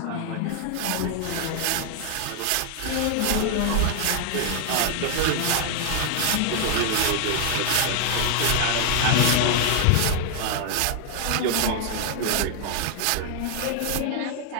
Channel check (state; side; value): different; both; correlation 0.00